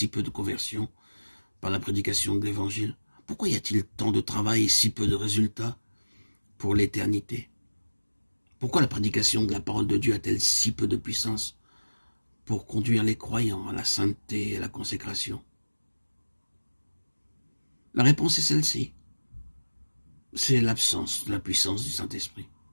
peu de conversions par la prédication de l'Évangile? Pourquoi y a-t-il tant de travail et si peu de résultats pour l'éternité? Pourquoi la prédication de la parole de Dieu a-t-elle si peu de puissance pour conduire les croyants à la sainteté et à la consécration? La réponse est celle-ci. C'est l'absence de la puissance du Saint-Esprit.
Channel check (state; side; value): inverted; both; correlation -1.00